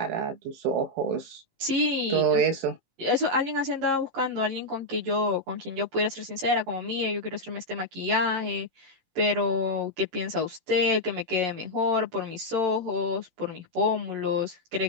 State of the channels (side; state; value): left; late; 18 ms